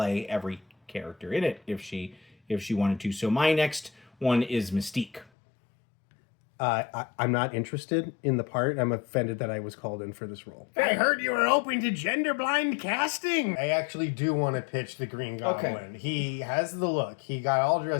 every character in it if she wanted to. So my next one is Mystique. I'm not interested in the part. I'm offended that I was called in for this role. I heard you were open to gender-blind casting. I actually do want to pitch the Green Goblin. Okay. He has the look. He got all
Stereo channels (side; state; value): right; drops out; at 5.2 s